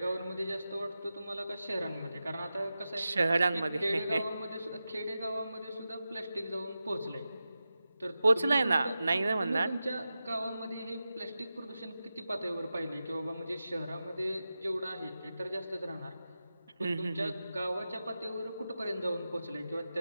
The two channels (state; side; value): inverted; both; correlation -0.92